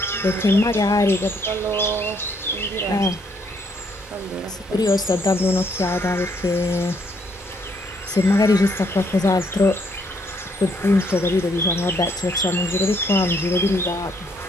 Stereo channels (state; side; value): normal; both; correlation 0.70